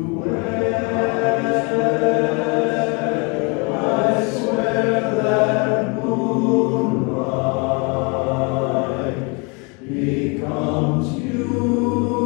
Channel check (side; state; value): right; quieter; 30.8 dB